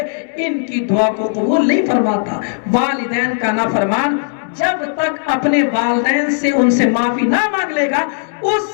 ان کی دعا کو قبول نہیں فرماتا۔ والدین کا نافرمان جب تک اپنے والدین سے ان سے معافی نہ مانگ لے گا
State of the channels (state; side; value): silent; right; digital silence